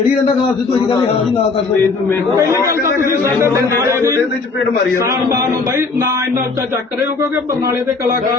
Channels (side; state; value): right; quieter; 4.1 dB